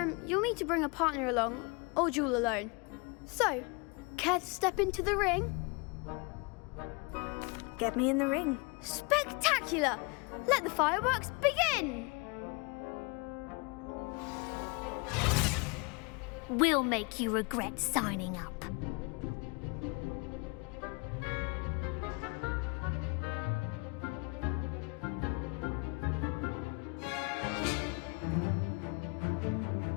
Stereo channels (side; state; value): right; quieter; 30.5 dB